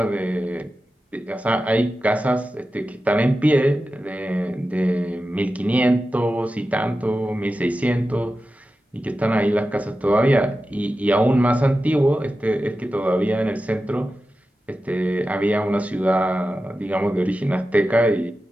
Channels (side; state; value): both; normal; correlation 0.93